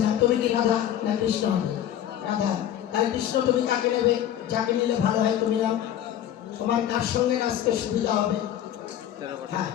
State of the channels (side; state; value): right; quieter; 11.0 dB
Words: নাও, তুমি কি রাধা না কৃষ্ণ হবে? রাধা। তাহলে কৃষ্ণ তুমি কাকে নেবে? যাকে নিলে ভালো হয় তুমি নাও, তোমার কার সঙ্গে নাচতে সুবিধা হবে? হ্যাঁ